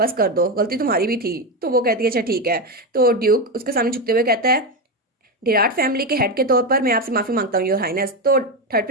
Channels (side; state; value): both; normal; correlation 0.12